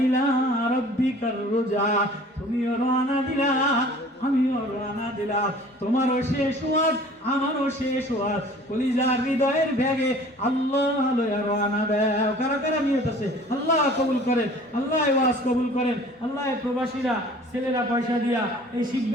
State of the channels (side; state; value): both; normal; correlation 0.48